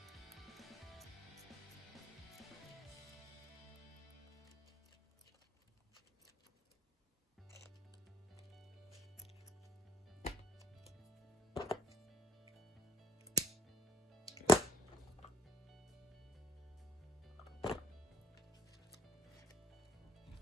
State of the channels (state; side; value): normal; both; correlation 0.55